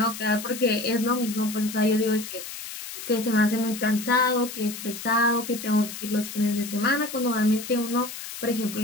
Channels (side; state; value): left; noise; hiss, 10 dB below the sound